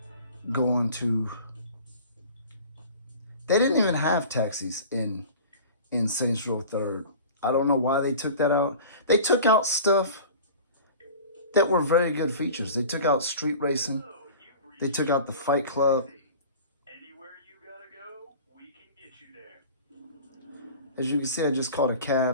going to... They didn't even have taxis in Saints Row 3rd. I don't know why they took that out. They took out stuff that were very good features. They took out street racing. They took out the Fight Club. As you can see, I just called a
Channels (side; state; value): both; inverted; correlation -0.40